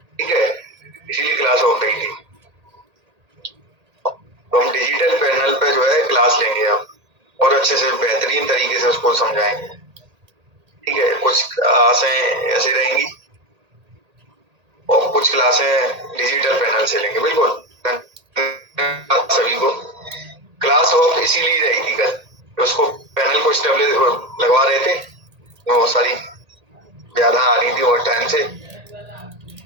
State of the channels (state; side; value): late; left; 1.8 ms